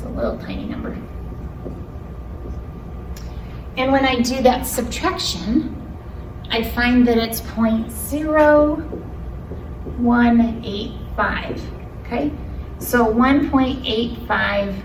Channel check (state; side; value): identical; both; correlation 1.00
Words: a little tiny number. And when I do that subtraction, I find that it's 0.0185, okay? So